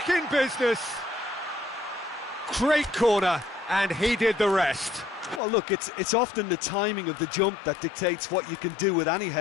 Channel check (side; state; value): right; drops out; at 5.4 s